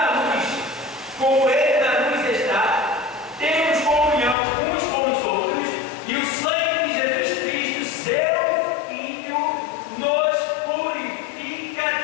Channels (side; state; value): right; drops out; at 4.4 s